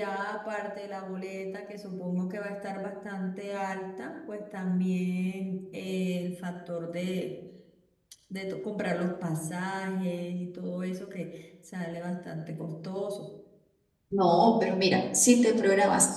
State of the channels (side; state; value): both; identical; correlation 1.00